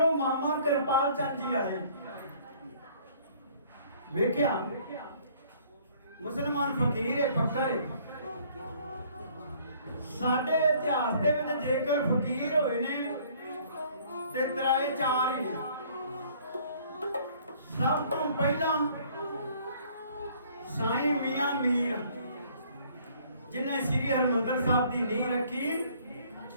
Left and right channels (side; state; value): both; inverted; correlation -0.58